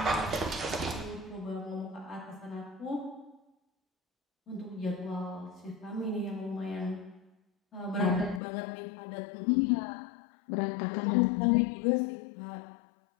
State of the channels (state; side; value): drops out; right; at 8.4 s